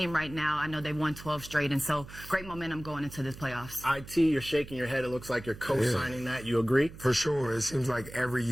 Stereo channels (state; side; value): noise; right; hum, 16 dB below the sound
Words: right now. I know they've won 12 straight, and so great momentum going into this playoffs. IT, you're shaking your head. It looks like you're co-signing that. You agree? For sure. It seems like every